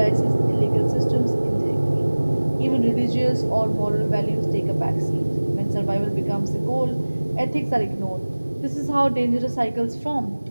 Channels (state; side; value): inverted; both; correlation -1.00